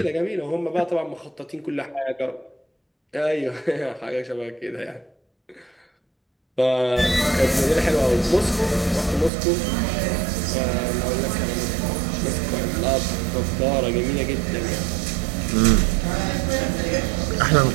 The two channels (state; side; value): drops out; left; at 9.3 s